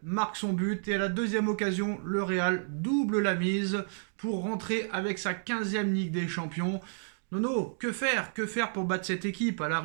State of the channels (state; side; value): silent; left; digital silence